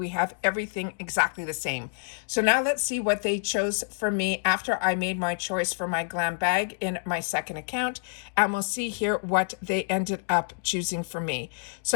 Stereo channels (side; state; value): right; silent; digital silence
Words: have everything exactly the same. So now let's see what they chose for me after I made my choice for my glam bag in my second account. And we'll see here what they ended up choosing for me.